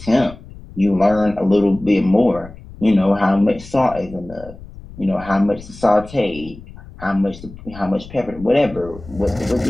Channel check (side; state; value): left; noise; rumble, 17 dB below the sound